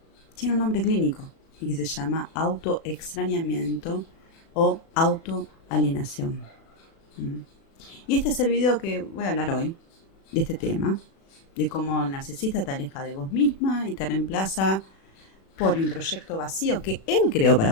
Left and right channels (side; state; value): right; late; 36 ms